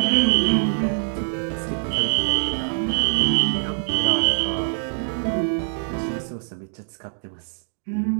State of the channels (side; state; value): left; silent; digital silence